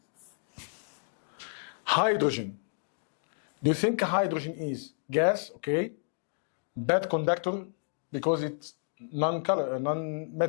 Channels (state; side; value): silent; right; digital silence